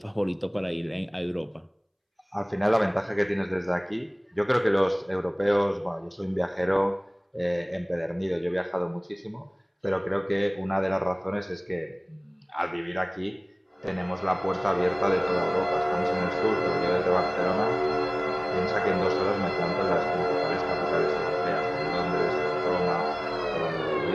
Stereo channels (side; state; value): both; identical; correlation 1.00